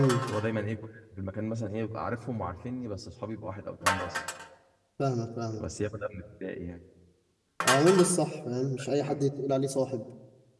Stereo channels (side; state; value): both; identical; correlation 1.00